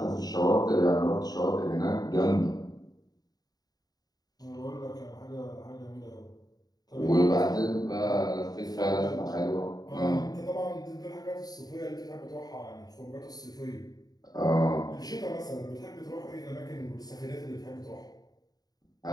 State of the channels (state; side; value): late; right; 0.19 ms